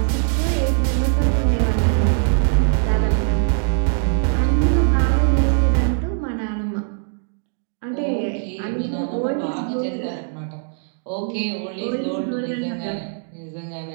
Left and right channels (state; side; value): silent; left; 65 dB below the other